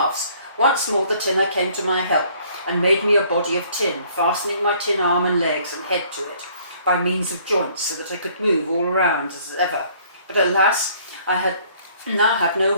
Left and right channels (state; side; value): inverted; both; correlation -0.59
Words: Once more the tinner came to my help, and made me a body of tin, fastening my tin arm and legs and head to it, by means of joints, so that I could move all around as ever. But alas, I now had no